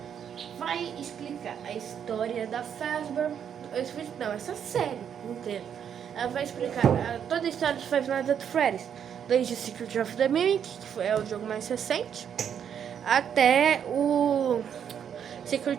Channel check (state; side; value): quieter; left; 8.4 dB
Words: Vai explicar a história da Fazbear, essa série inteira. Ela vai explicar toda a história de Five Nights at Freddy's, desde Secret of the Mimic, que é o jogo mais recente, até o